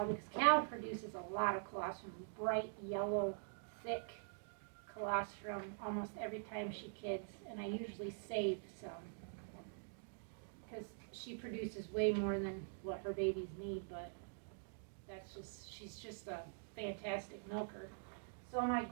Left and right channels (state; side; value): silent; left; digital silence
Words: because Cal produces a lot of colostrum, bright yellow, thick colostrum almost every time she kids, and I usually save some because she produces way more than what her babies need, but she's just a fantastic milker. So my